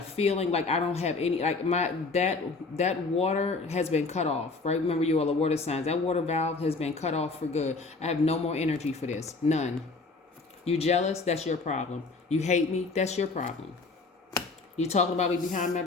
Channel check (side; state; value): right; quieter; 3.9 dB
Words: like I don't have any, like that water has been cut off, right? Remember, you all are water signs. That water valve has been cut off for good. I have no more energy for this. None. You jealous? That's your problem. You hate me? That's your problem. You talking about me behind my